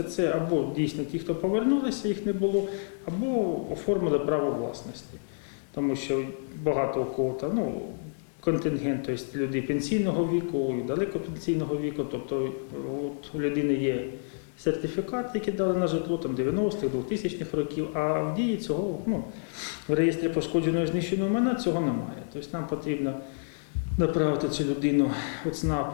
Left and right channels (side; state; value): right; silent; digital silence